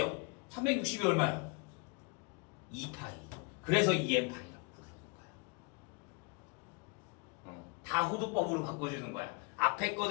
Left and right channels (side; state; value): right; quieter; 31.6 dB